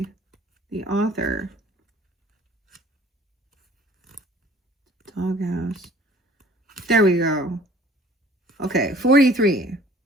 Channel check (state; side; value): normal; both; correlation 0.52